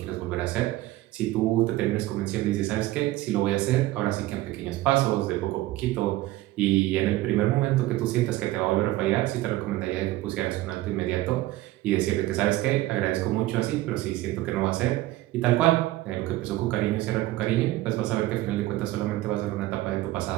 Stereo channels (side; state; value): left; quieter; 16.8 dB